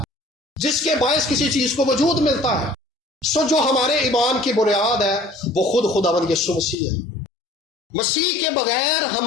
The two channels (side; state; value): right; drops out; at 6.8 s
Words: جس کے باعث کسی چیز کو وجود ملتا ہے۔ سو جو ہمارے ایمان کی بنیاد ہے وہ خود خداوند یسوع مسیح ہے۔ مسیح کے بغیر